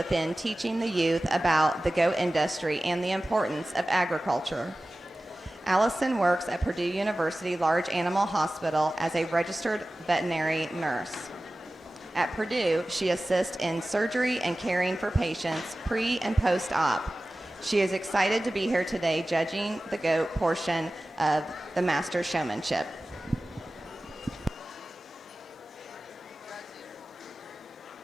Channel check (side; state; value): both; normal; correlation 0.96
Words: teaching the youth about the goat industry and the importance of agriculture. Allison works at Purdue University Large Animal Hospital as a registered veterinary nurse. At Purdue, she assists in surgery and caring for patients pre and post-op. She is excited to be here today judging the goat portion of the Master Showmanship.